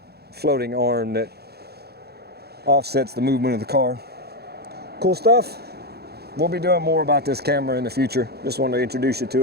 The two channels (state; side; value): late; left; 0.47 ms